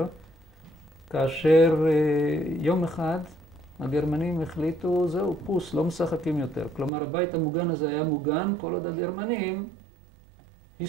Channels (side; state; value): left; drops out; at 6.9 s